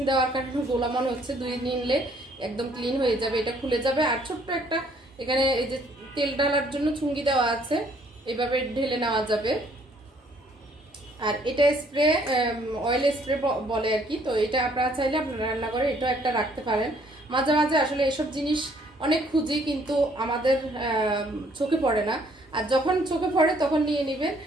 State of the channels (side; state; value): both; normal; correlation 0.63